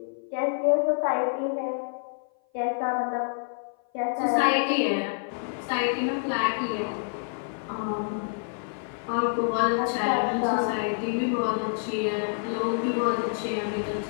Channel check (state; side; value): silent; right; 56 dB below the other